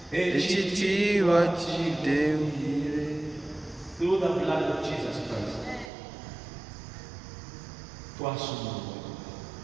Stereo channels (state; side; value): drops out; left; at 5.9 s